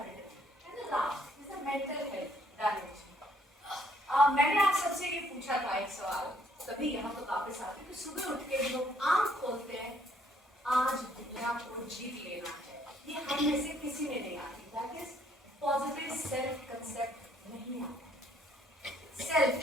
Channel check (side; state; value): both; normal; correlation 0.66